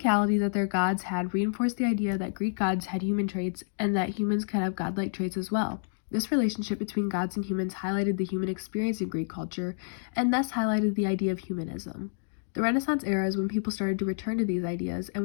that their gods had reinforced the idea that Greek gods had human traits and that humans could have godlike traits as well. This relationship between gods and humans highlighted the human experience in Greek culture, and thus highlighted the idea of humanism. The Renaissance era is when people started to return to these ideas and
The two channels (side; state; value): right; silent; digital silence